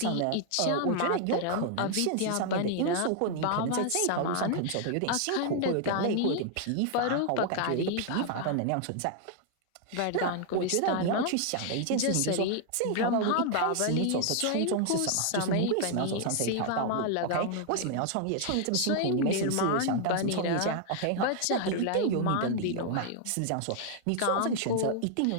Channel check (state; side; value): different; both; correlation 0.00